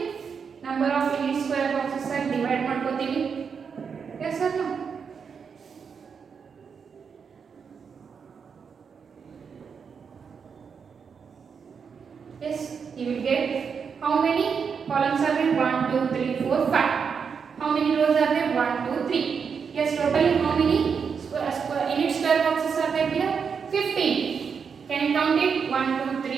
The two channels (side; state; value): left; quieter; 6.3 dB